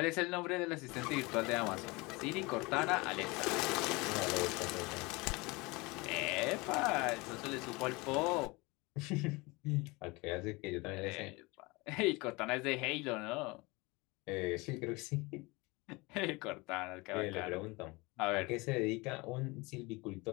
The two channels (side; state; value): right; quieter; 24.7 dB